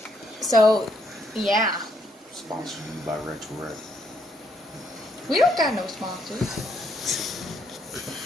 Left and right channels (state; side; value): normal; both; correlation 0.72